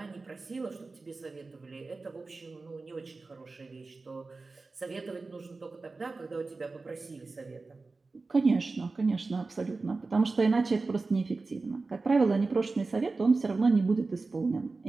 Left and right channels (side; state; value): left; quieter; 3.8 dB